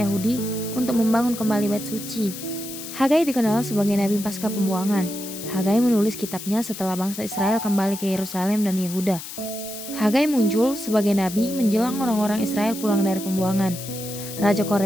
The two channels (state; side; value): noise; left; hiss, 11 dB below the sound